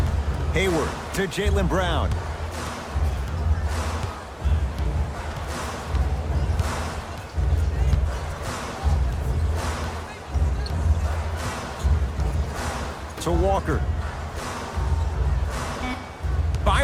Hayward to Jaylen Brown. To Walker.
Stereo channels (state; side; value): identical; both; correlation 1.00